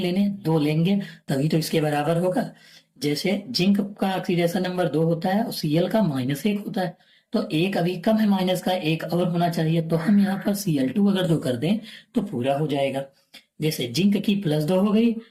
2 लेंगे, तभी तो इसके बराबर होगा। जैसे जिंक का ऑक्सीडेशन नंबर 2 होता है और Cl का -1 होता है, तो एक अभी कम है, माइनस का एक और होना चाहिए। तो हम यहाँ पर Cl2 अगर जो कर दें तो पूरा हो जाएगा। जैसे जिंक की +2 हो गई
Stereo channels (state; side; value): identical; both; correlation 1.00